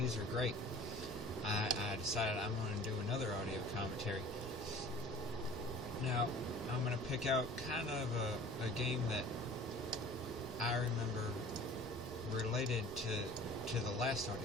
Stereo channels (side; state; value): both; normal; correlation 0.45